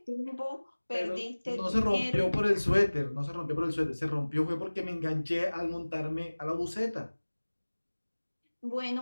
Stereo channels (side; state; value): both; inverted; correlation -1.00